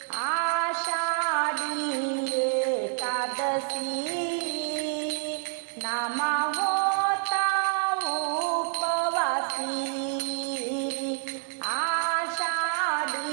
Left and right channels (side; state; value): left; silent; 59 dB below the other